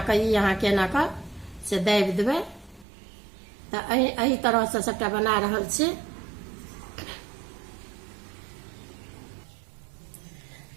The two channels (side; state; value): left; drops out; at 2.9 s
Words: कर यहाँ के एना कर से दाबि देबे। तो एही तरह से सबटा बना रहल छी।